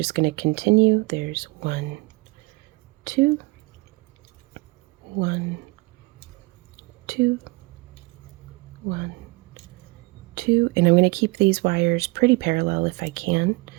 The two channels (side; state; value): left; quieter; 24.4 dB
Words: going to continue. There's 1, 2, 1, 2, 1, 2. And I'm going to keep these wires pretty parallel if I can,